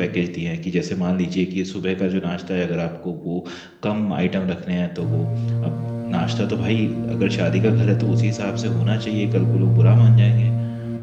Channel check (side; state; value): both; identical; correlation 1.00